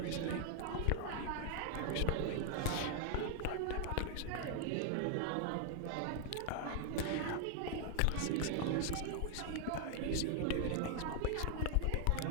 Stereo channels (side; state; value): both; different; correlation 0.00